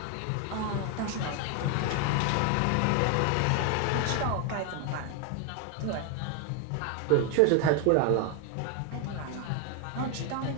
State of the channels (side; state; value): both; different; correlation 0.01